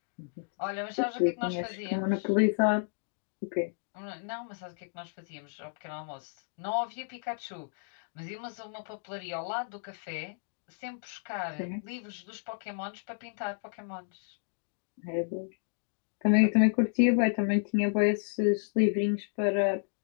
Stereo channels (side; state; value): right; silent; digital silence